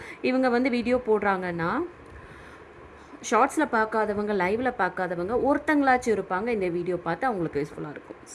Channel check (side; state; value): both; identical; correlation 1.00